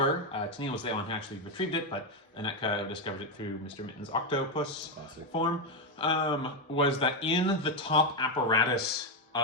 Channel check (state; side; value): normal; both; correlation 0.06